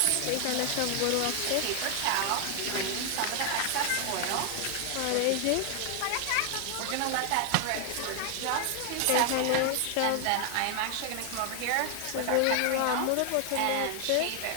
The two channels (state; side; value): different; both; correlation 0.00